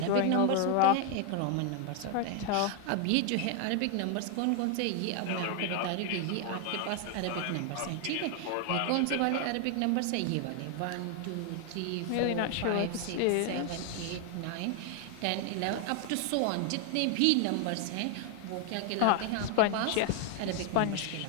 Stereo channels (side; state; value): both; different; correlation 0.00